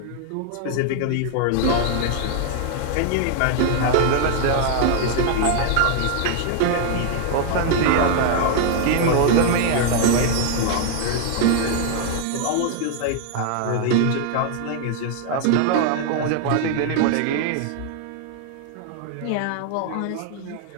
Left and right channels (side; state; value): both; different; correlation 0.00